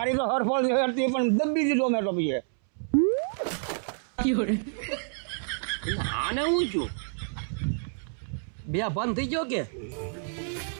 તો હરફળ હતી પણ દબી દીધો મેં તો પછી આને હું છું બે બંધ થઈ ગયો કે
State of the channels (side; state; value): left; silent; 59 dB below the other